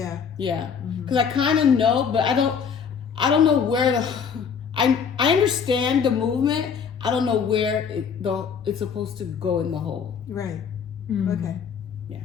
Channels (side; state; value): right; quieter; 6.7 dB